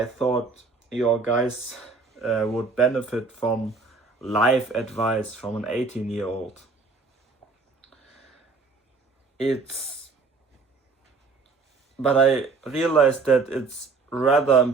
thought your guys would benefit from life advice from an 18-year-old. But I realized that it's rather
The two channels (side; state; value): left; quieter; 4.2 dB